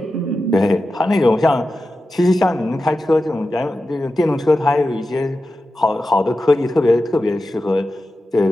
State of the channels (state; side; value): normal; both; correlation 0.92